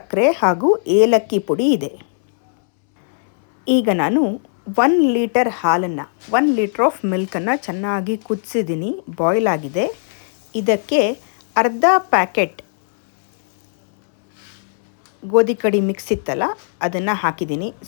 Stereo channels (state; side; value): silent; right; 67 dB below the other